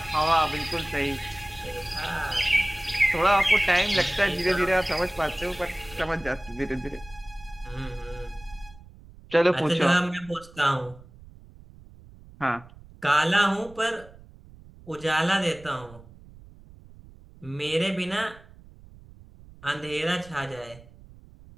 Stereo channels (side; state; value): right; noise; rumble, 21 dB below the sound